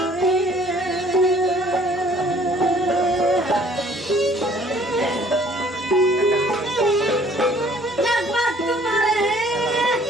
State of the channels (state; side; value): normal; both; correlation 0.57